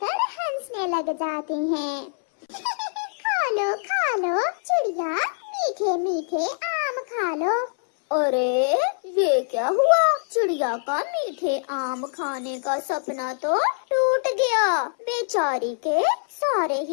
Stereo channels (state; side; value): silent; right; 62 dB below the other